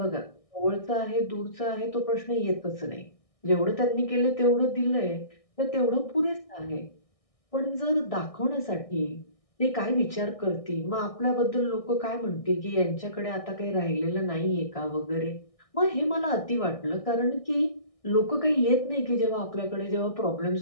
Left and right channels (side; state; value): right; late; 1.6 ms